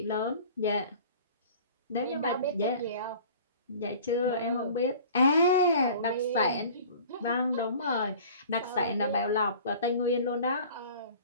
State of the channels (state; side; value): inverted; both; correlation -0.45